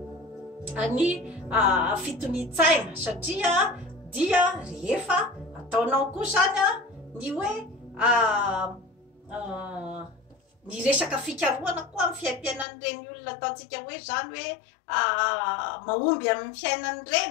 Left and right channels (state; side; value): drops out; right; at 12.7 s